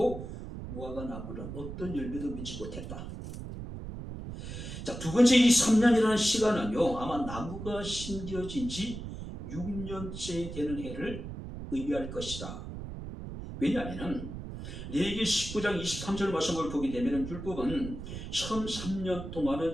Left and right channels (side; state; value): right; noise; rumble, 8 dB below the sound